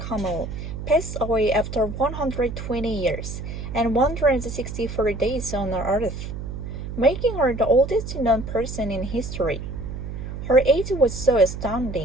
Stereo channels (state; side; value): noise; right; hum, 7 dB below the sound